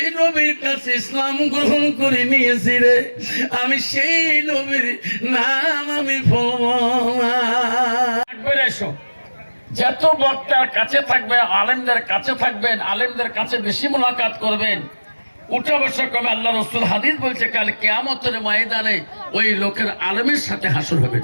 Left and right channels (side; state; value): both; inverted; correlation -1.00